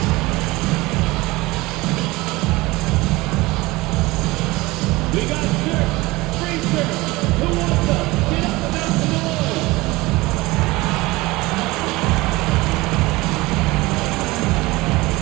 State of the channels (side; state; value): left; quieter; 21.1 dB